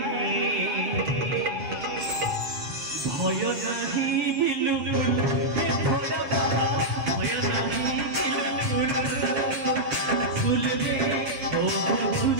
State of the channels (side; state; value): left; late; 6.9 ms